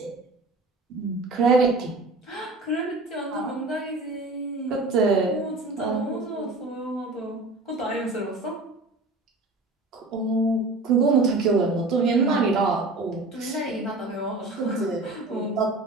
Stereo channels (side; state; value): left; quieter; 3.1 dB